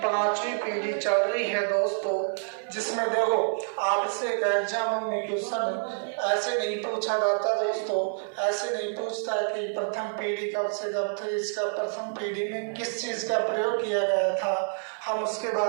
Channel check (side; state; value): left; silent; digital silence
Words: 5वीं पीढ़ी चल रही है दोस्तों, जिसमें देखो आपसे एक एग्जाम में क्वेश्चन ऐसे नहीं पूछा जाता दोस्तों। ऐसे नहीं पूछता कि प्रथम पीढ़ी कब से कब थी, इसका प्रथम पीढ़ी में किस चीज का प्रयोग किया गया था। हम उसके